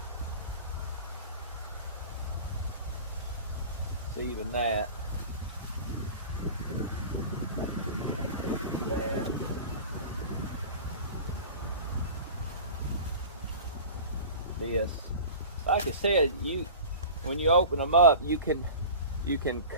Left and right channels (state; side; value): inverted; both; correlation -0.37